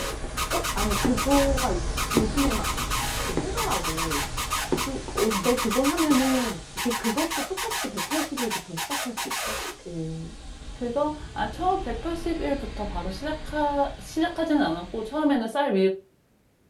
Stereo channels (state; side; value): identical; both; correlation 1.00